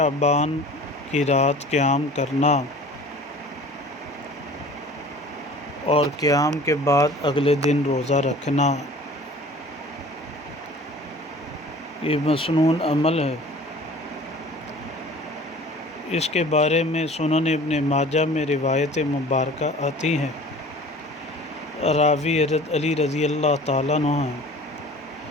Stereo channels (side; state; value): both; normal; correlation 0.45